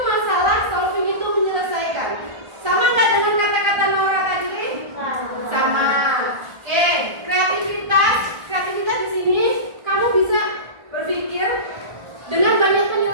solving itu menyelesaikan. Sama nggak dengan kata-kata Nora tadi? Sama. Oke, kreativitas di sini kamu bisa berpikir dengan banyak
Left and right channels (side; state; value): left; late; 1.4 ms